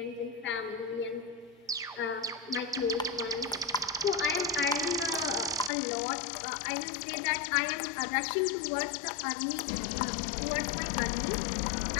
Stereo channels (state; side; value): drops out; right; at 5.7 s